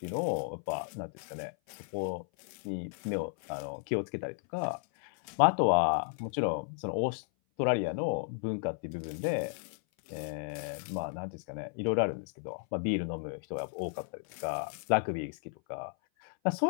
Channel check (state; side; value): silent; right; 55 dB below the other